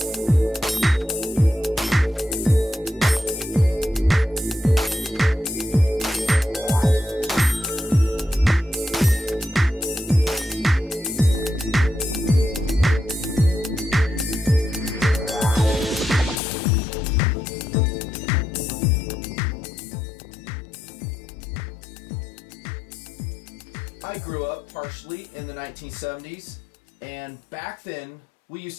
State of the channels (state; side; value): drops out; right; at 16.4 s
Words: I grew up partially in the 1970s, and back then we used